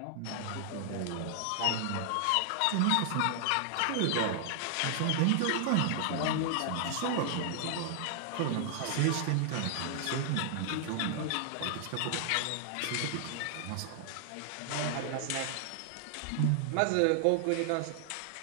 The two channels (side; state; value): both; different; correlation 0.00